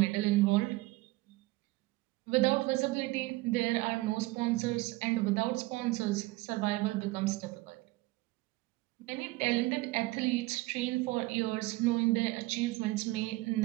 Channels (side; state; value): left; quieter; 20.7 dB